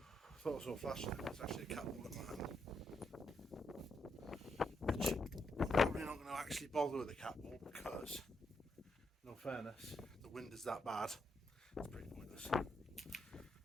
I thought I saw a flash there. It's actually a cat ball in my hand. Which I'm probably not going to actually bother with the cat ball because, in all fairness, the wind is that bad. It's pretty pointless.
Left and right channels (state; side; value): normal; both; correlation 0.79